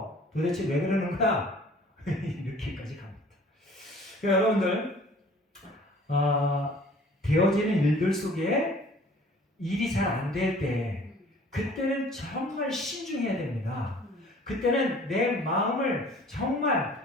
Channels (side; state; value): both; normal; correlation 0.51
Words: 도대체 왜 그러는 거야? 이렇게까지 갑니다. 그러니까 여러분들, 되어지는 일들 속에 일이 잘 안 될 때, 그때는 정말 신중해야 됩니다. 그때는 내 마음을